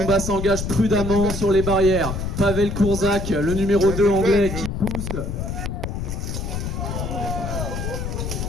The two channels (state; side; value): noise; left; rumble, 4 dB below the sound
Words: s'engage prudemment sur les barrières. Pavel Kurzak, le numéro 2 anglais qui pousse.